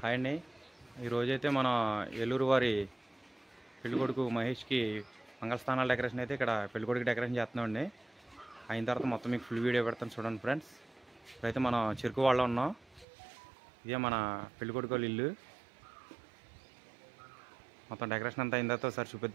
Hi అండి. ఈరోజైతే మన ఏలూరు వారి పెళ్ళికొడుకు మహేష్కి మంగళస్థానాల డెకరేషన్ అయితే ఇక్కడ పెళ్ళికొడుకు డెకరేషన్ చేస్తున్నామండి. అయిన తర్వాత మొత్తం మీకు ఫుల్ వీడియో పెడతాను చూడండి ఫ్రెండ్స్. ఇప్పుడైతే మనం చెరుకు వాళ్ళ ఉన్నాం. ఇదే మన పెళ్ళికొడుకు వాళ్ళ ఇల్లు. మొత్తం డెకరేషన్ అంతా అయిన తర్వాత ఒకసారి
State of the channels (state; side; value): drops out; left; at 13.1 s